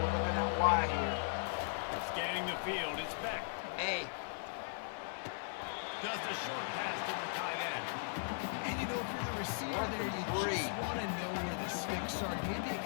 looking at wide here. Scanning the field, it's Beck. Hey. Does the short pass to the tight end. And you know, if you're the receiver there, you just want to know where the sticks are. Maybe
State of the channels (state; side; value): silent; right; 52 dB below the other